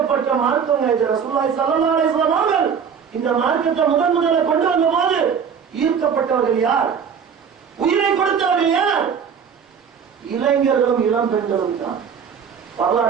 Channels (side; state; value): left; quieter; 7.0 dB